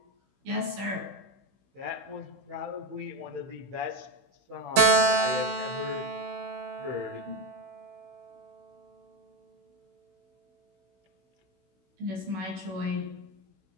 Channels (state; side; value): late; left; 16 ms